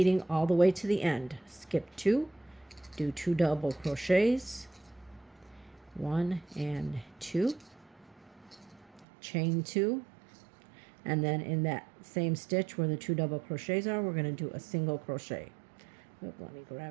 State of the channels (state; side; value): drops out; left; at 9.1 s